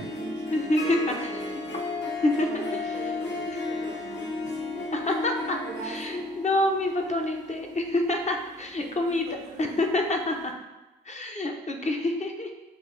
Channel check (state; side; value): normal; both; correlation 0.59